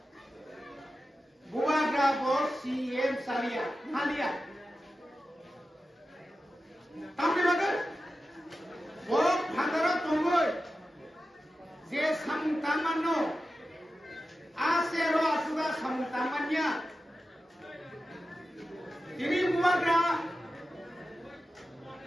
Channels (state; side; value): normal; both; correlation 0.93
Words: বুবাগ্রা বস সিএম সালিয়া হালিয়া তামনি বাগে বড় ভাদরা তঙ্গই যে সামতামান্য আছে র আসুদা সামতামানিয়া তিনি বুবাগ্রা